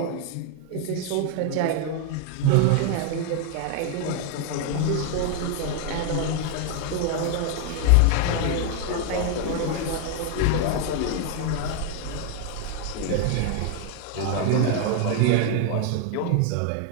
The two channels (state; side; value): different; both; correlation 0.00